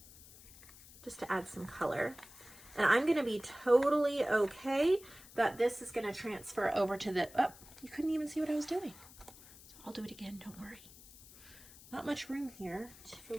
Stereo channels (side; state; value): left; noise; hiss, 20 dB below the sound